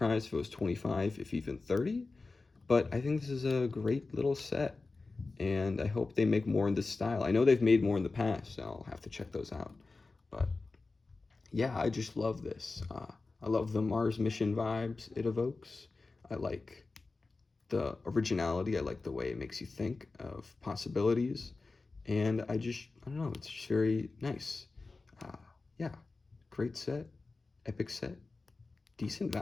if it was 25, if even 30. But I think this is a great little set, and I hope they make more in this style. I know they've made more in the past, so I'll have to check those out. But yeah, I just love this. I love the Mars mission vibes it evokes. I like the originality. I like the way it makes you think of possibilities. And I don't know, it's just very nice. Yeah, great set, epic set, decent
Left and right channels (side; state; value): right; quieter; 3.7 dB